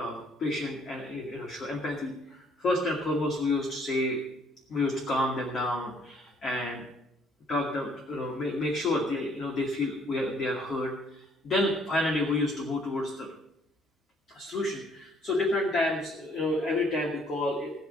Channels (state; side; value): normal; both; correlation 0.64